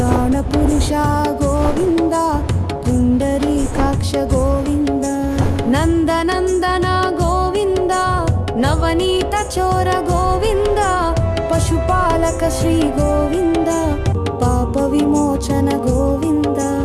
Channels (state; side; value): identical; both; correlation 1.00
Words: పురుష గోవింద పుండరీకాక్ష గోవింద నందనందన గోవింద నవనీత చోర గోవింద పశుపాలక శ్రీ గోవింద పాప విమోచన గోవింద